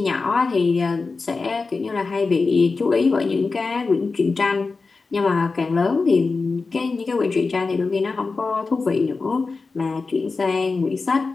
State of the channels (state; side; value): quieter; right; 4.2 dB